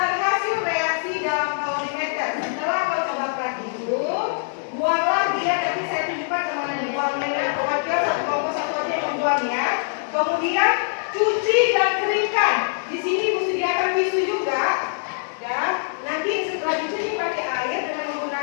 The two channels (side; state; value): right; silent; digital silence